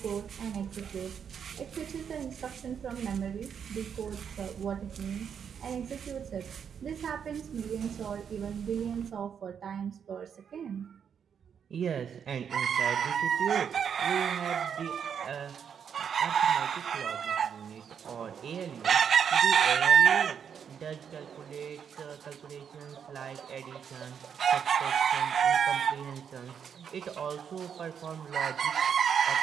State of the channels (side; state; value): left; quieter; 7.6 dB